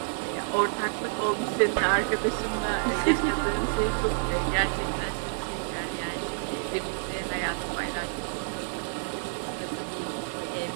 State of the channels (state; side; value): silent; left; digital silence